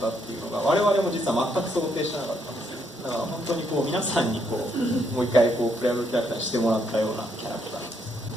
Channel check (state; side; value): normal; both; correlation 0.74